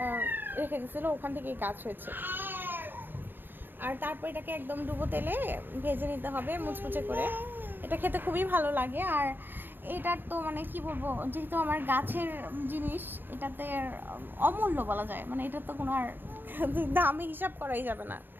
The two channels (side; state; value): left; late; 0.094 ms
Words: রেখে গেছিলো, ওখান থেকেই গাছ হয়েছে। আর তারপর এটাকে একদম ডুবো তেলে ভেজে নিতে হবে মুচমুচে করে। এটা খেতে খুবই ভালো লাগে। আর এটার তো মানে কি বলবো, যেহেতু আমার গাছের জিনিস, এটাতে অমূল্য বলা যায়, মানে এটার তো কোনো আর দামে হিসাব করাই যাবে না,